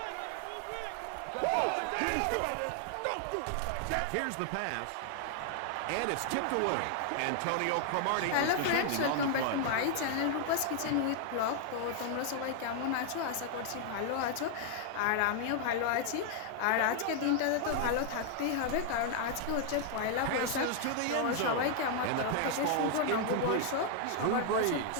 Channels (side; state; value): both; different; correlation 0.00